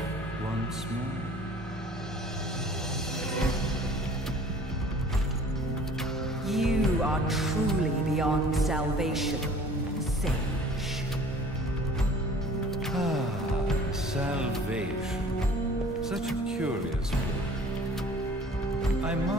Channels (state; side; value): normal; both; correlation 0.49